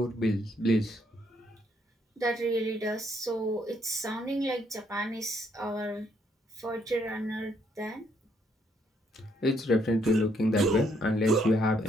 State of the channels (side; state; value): both; normal; correlation 0.71